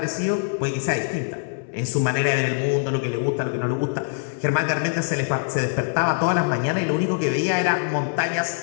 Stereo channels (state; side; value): silent; right; 63 dB below the other